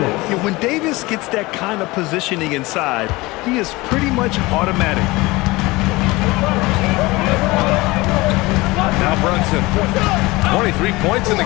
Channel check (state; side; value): quieter; right; 21.7 dB